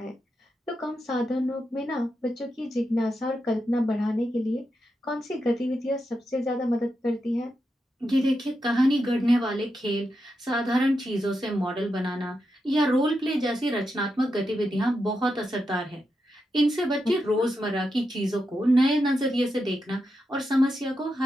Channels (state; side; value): normal; both; correlation 0.86